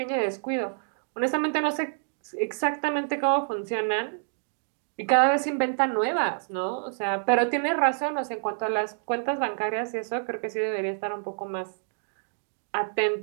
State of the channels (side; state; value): left; silent; digital silence